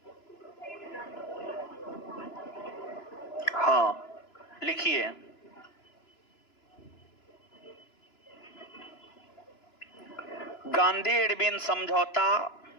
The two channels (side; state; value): right; late; 2.9 ms